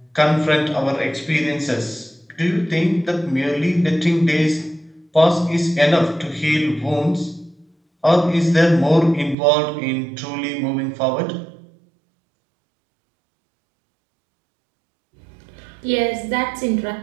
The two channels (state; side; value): drops out; left; at 9.3 s